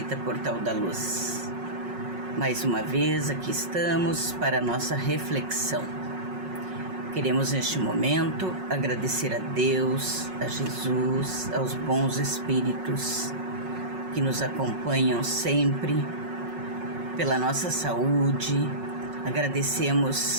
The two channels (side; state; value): left; late; 5.4 ms